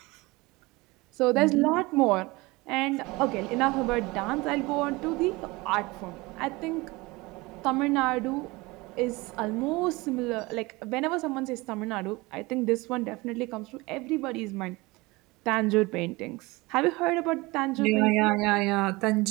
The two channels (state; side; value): quieter; left; 22.9 dB